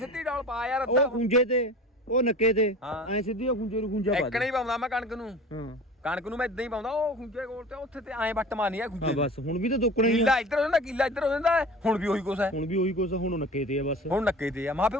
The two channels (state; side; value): normal; both; correlation 0.38